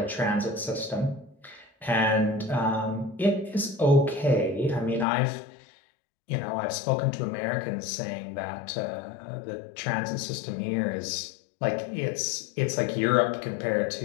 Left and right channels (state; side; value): drops out; right; at 5.1 s